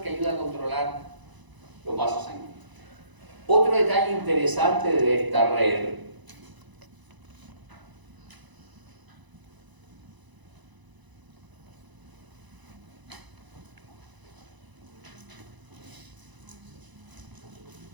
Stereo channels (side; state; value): left; late; 1.0 ms